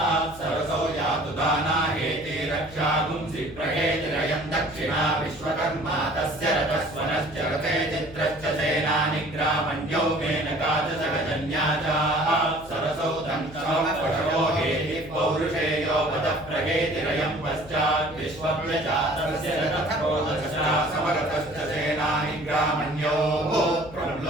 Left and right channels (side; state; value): left; noise; hum, 19 dB below the sound